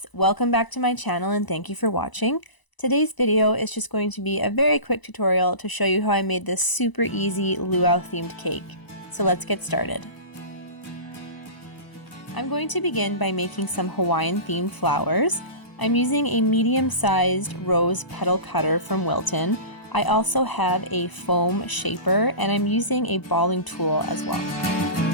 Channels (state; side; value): late; right; 1.0 ms